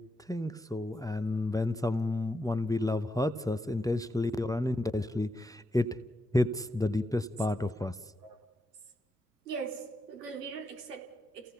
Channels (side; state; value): both; normal; correlation 0.84